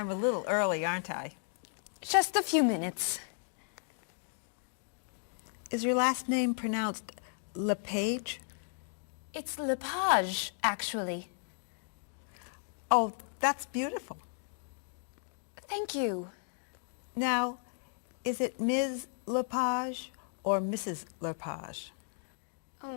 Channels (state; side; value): silent; right; 55 dB below the other